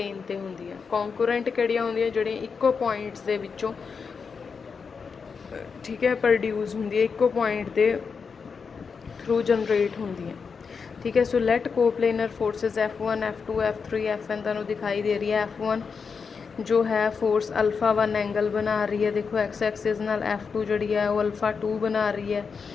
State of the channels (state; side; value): quieter; right; 5.6 dB